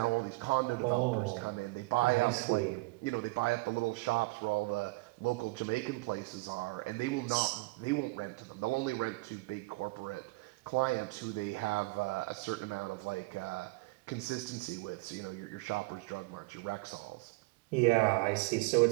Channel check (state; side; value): quieter; left; 24.3 dB